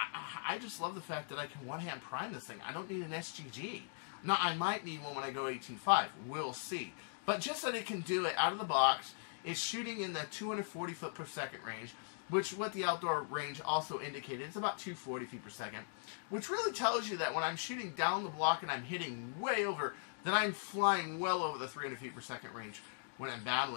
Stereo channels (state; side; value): silent; right; digital silence